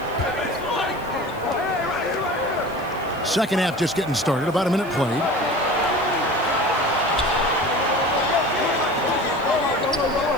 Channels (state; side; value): noise; left; hiss, 24 dB below the sound